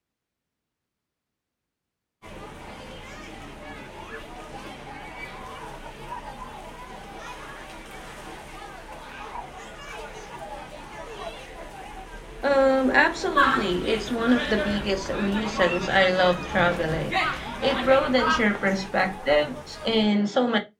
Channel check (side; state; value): both; identical; correlation 1.00